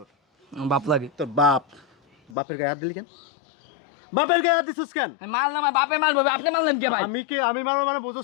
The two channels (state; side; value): drops out; right; at 2.4 s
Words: বাপ লাগে তোর বাপের গায়ে হাত দিলি কেন? বাপের গায়ে হাত দিছিস কেন? মারলাম, আমার বাপে মারবো, আপনি মারলেন কে ভাই? আমি মারবো মানে